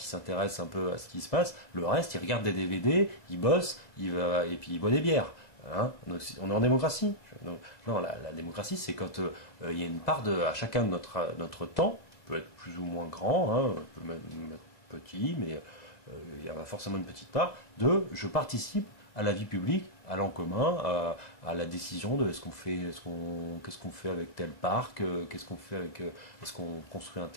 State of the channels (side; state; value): right; late; 2.0 ms